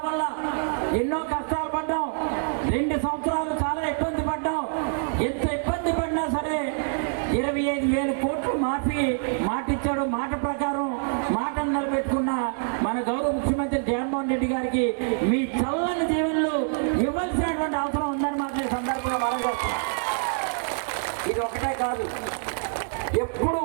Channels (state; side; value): silent; left; digital silence